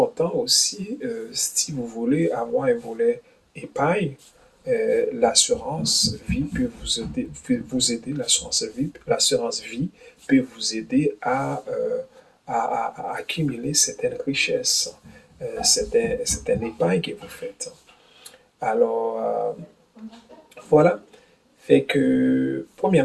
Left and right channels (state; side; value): identical; both; correlation 1.00